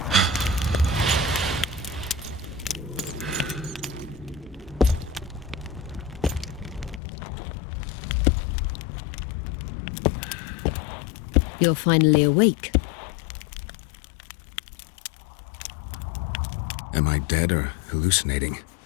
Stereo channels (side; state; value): right; drops out; at 7.0 s